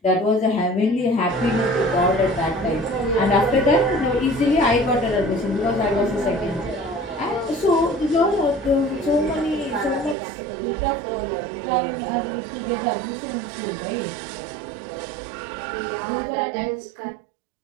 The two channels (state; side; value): drops out; left; at 10.2 s